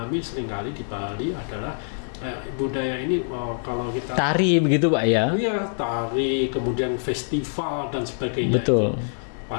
seringkali di Bali adalah budaya ini kalau kita tari begitu, Pak, ya? Iya, tari, kemudian festival dan sebagainya. Betul. Itu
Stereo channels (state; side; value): silent; right; 56 dB below the other